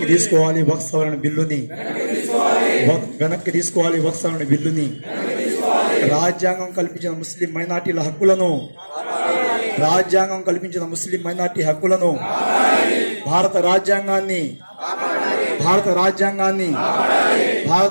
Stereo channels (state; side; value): inverted; both; correlation -1.00